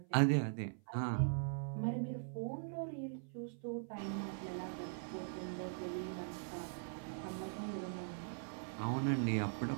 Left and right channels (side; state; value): left; silent; 50 dB below the other